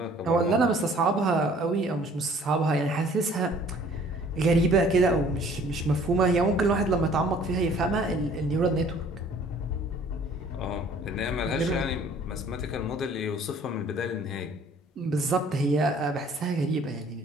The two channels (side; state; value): both; normal; correlation 0.54